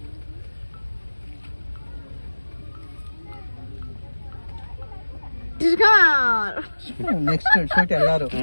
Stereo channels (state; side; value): inverted; both; correlation -1.00